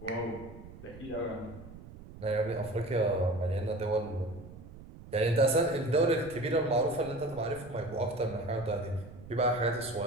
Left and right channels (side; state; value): right; noise; rumble, 16 dB below the sound